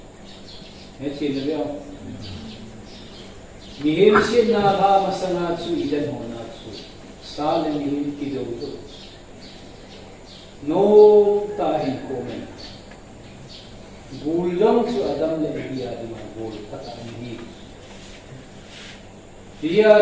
है चीज ले मिहिम से ना भा मसना चु इधन होना चु साल मिहिम की दो तो नो ताही को में गुलम चु अदम ले बिया दिमा गुल पता नहीं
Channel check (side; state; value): both; identical; correlation 1.00